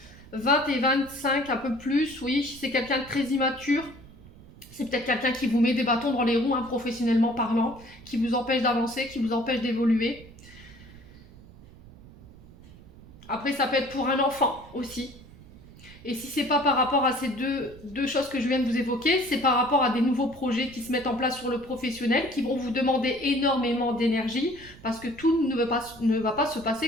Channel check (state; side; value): noise; right; rumble, 21 dB below the sound